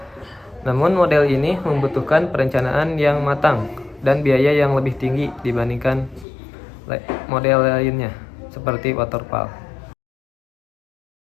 Namun model ini membutuhkan perencanaan yang matang dan biaya yang lebih tinggi dibandingkan model lainnya, seperti waterfall.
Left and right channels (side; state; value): right; drops out; at 6.2 s